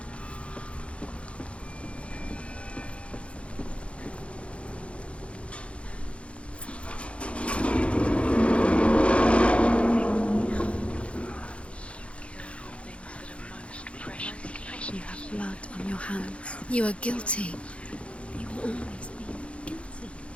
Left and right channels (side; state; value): right; late; 0.060 ms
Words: You have blood on your hands. You are guilty. You will always be guilty.